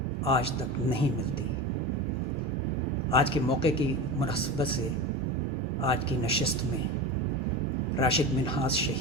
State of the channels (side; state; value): both; normal; correlation 0.26